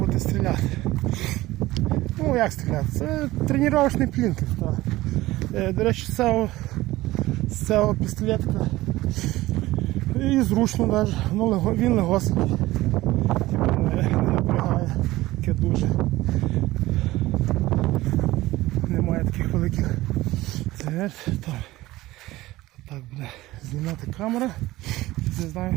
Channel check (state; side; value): quieter; left; 17.8 dB